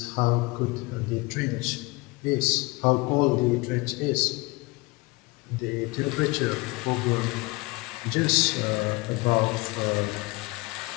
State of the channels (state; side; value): quieter; right; 24.5 dB